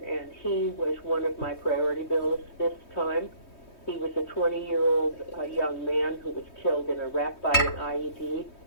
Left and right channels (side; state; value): right; late; 3.2 ms